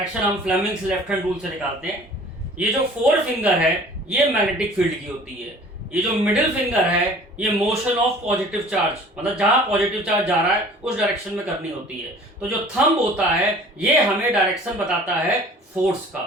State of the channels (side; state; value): both; normal; correlation 0.48